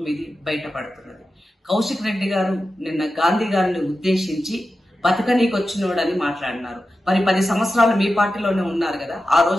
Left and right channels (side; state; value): both; normal; correlation 0.92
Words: ఇది బయటపడుతున్నది. కౌశిక్ రెడ్డి గారు నిన్న గాంధీ గారిని ఉద్దేశించి బతకనీకొచ్చినోడని మాట్లాడినారు. మరి 10 సంవత్సరాలు మీ పార్టీలోనే ఉన్నారు కదా, ఆ